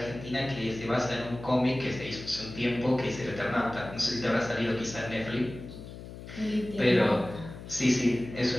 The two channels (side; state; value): left; noise; hum, 13 dB below the sound